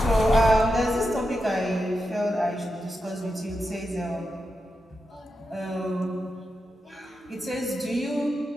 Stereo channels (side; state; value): both; normal; correlation 0.88